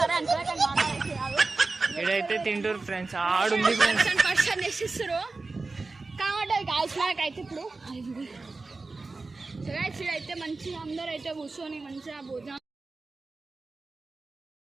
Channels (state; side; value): quieter; left; 3.7 dB